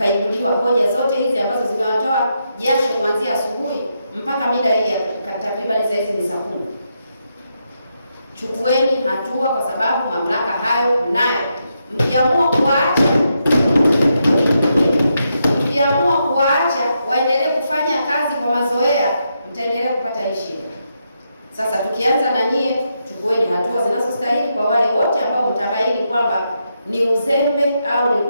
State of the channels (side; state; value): both; inverted; correlation -0.82